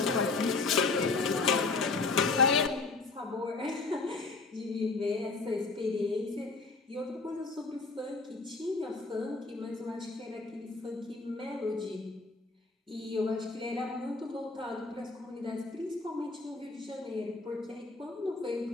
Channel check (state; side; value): quieter; right; 3.9 dB